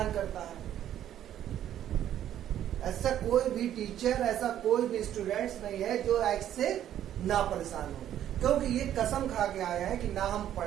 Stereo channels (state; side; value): quieter; left; 11.2 dB